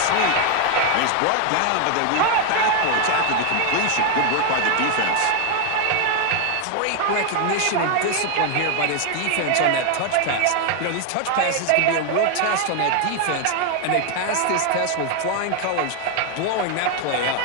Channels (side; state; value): both; different; correlation 0.01